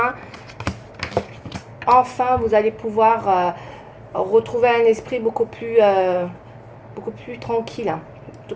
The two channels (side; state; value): both; identical; correlation 1.00